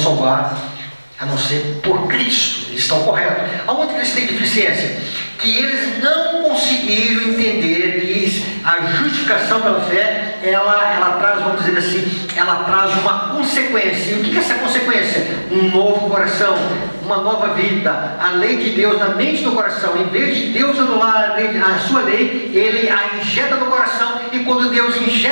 a não ser por Cristo. Eles estão corretos. Aonde que eles têm deficiência? Que eles não conseguiram entender que a justificação pela fé, ela traz, vamos dizer assim, ela traz uma consequência. E o que é essa consequência? Um novo coração, uma nova vida. A lei de Deus na mente do coração. Em vez de Deus anular a sua lei, Ele a injeta no coração. E quando Deus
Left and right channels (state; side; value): inverted; both; correlation -1.00